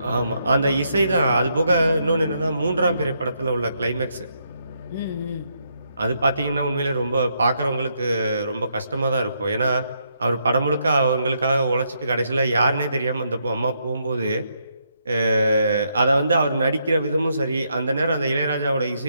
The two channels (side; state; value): both; inverted; correlation -0.77